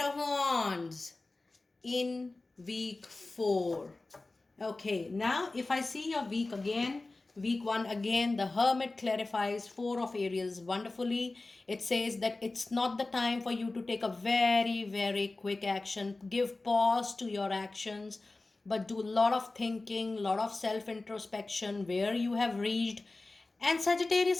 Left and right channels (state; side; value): quieter; right; 3.2 dB